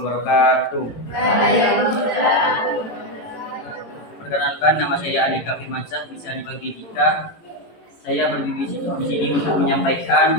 Perkenalkan, nama saya Andika Firmansyah, bisa dipanggil Dika. Saya berdiri di sini untuk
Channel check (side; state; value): right; late; 18 ms